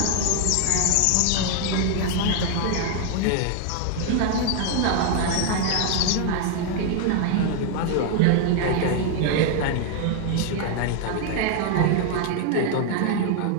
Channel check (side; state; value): both; different; correlation 0.00